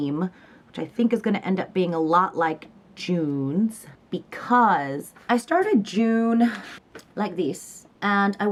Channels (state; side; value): identical; both; correlation 1.00